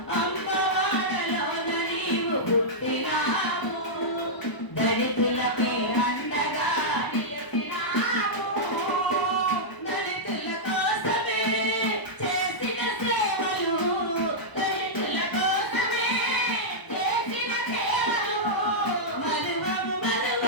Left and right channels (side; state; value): right; late; 1.0 ms